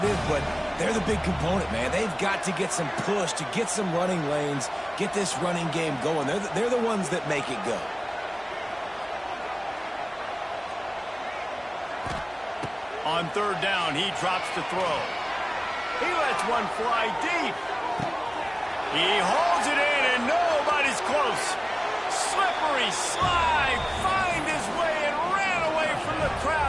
but they're the big component, man. They've got to get some push, to get some running lanes, get this running game going. They're the ones that make it go. On third down, he drops to throw. He lets one fly deep. He holds it in, and nobody's close. Slippery slide, find his way and ran away from the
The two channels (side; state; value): both; identical; correlation 1.00